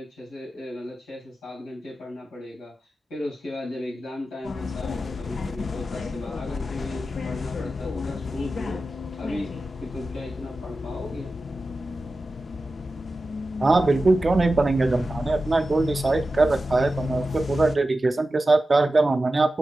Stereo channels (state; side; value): normal; both; correlation 0.93